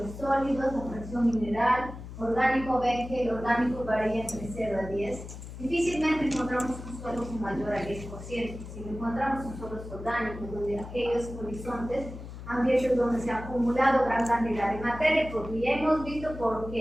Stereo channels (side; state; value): left; noise; hum, 12 dB below the sound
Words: sólidos, la fracción mineral, orgánico. Ven que el orgánico varía entre 0 a 10. Difícilmente encontramos un suelo con mayor a 10%. Si encontramos un suelos orgánicos, donde aquellos horizontes ambientes donde se ha acumulado gran cantidad de materia, porque ya hemos visto por